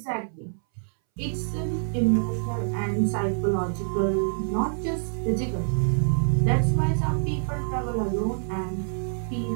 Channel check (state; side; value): silent; left; 61 dB below the other